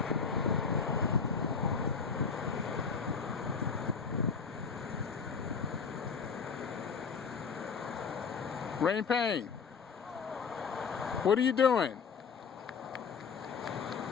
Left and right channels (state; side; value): quieter; right; 5.9 dB